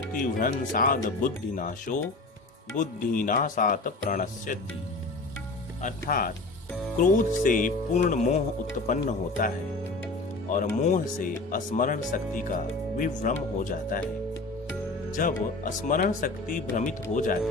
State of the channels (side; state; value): right; quieter; 3.2 dB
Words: बुद्धिनाशो बुद्धिनाशात् प्रणश्यति। अर्थात क्रोध से पूर्ण मोह उत्पन्न होता है और मोह से स्मरण शक्ति का विभ्रम हो जाता है। जब स्मरण शक्ति भ्रमित हो